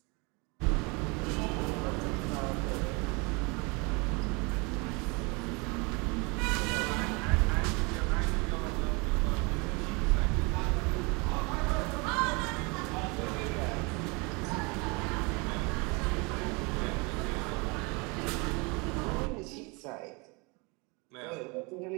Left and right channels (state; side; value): quieter; left; 29.0 dB